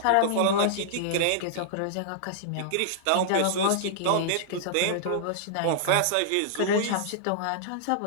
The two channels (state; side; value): different; both; correlation -0.02